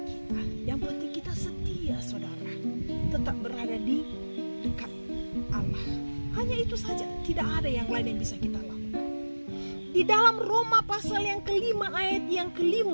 kita. Yang penting kita setia, saudara, tetap berada di dekat Allah. Hanya itu saja, tidak ada yang lain yang bisa kita lakukan. Di dalam Roma pasal yang kelima ayat yang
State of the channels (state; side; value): inverted; both; correlation -1.00